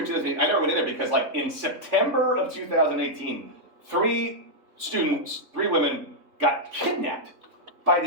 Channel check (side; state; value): left; late; 3.5 ms